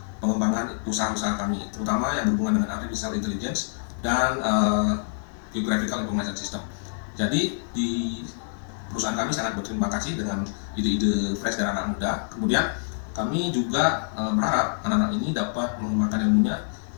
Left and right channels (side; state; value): right; silent; 61 dB below the other